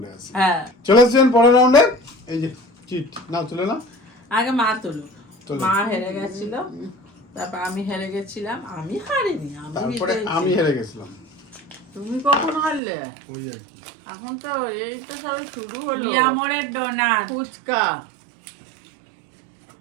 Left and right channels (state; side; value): drops out; left; at 12.8 s